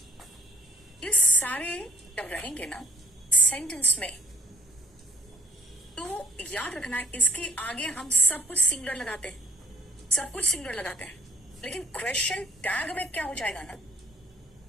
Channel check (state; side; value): normal; both; correlation 0.59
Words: ये सारे जब रहेंगे ना सेंटेंस में, तो याद रखना इसके आगे हम सब कुछ सिंगुलर लगाते हैं, सब कुछ सिंगुलर लगाते हैं। लेकिन क्वेश्चन टैग में क्या हो जाएगा ना,